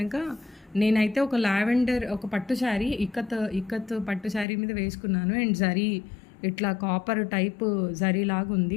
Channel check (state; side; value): drops out; right; at 4.5 s